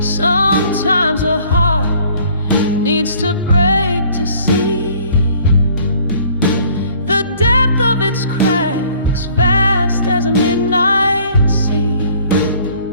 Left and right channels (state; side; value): inverted; both; correlation -0.56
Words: a heart needs to break to see the depth of its cracks, vast as a midnight sea.